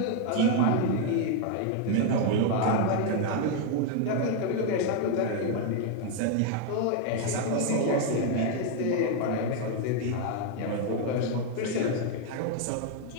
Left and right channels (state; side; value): different; both; correlation 0.01